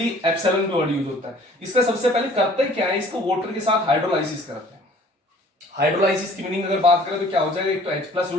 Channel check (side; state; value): both; normal; correlation 0.52